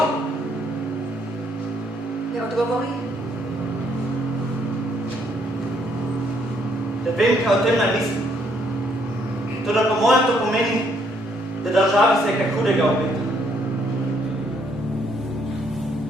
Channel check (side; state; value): both; normal; correlation 0.69